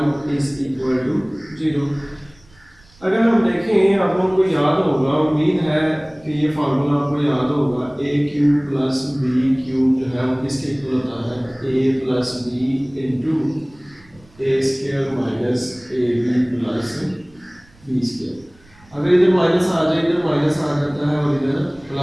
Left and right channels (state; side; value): noise; right; rumble, 28 dB below the sound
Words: is equal to 0। अगर हम देखें, आप लोगों को याद होगा, उम्मीद है कि ये फार्मूला आपको याद होगा, a cube plus b cube जो है वो किसके इक्वल होता है, a plus b into a square minus a b plus b square. अगर इधर माइनस आ जाए, इधर माइनस आ जाता है और इधर